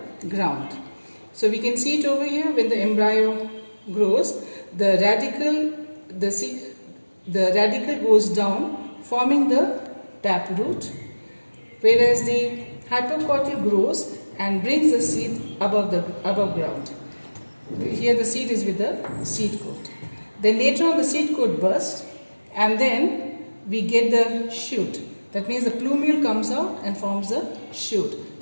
ground. So we can see it over here. When the embryo grows, the radical goes down, forming the taproot, whereas the hypocotyl grows and brings the seed above ground. Here the seed is with the seed coat. Then later on the seed coat bursts, and then we get the shoot. That means the plumule comes out and forms the shoot.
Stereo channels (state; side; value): inverted; both; correlation -1.00